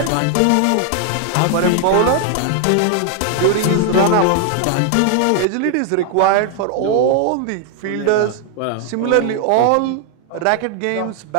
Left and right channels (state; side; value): different; both; correlation 0.00